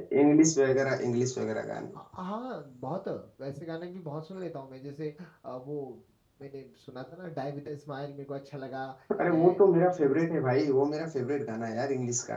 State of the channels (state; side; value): identical; both; correlation 1.00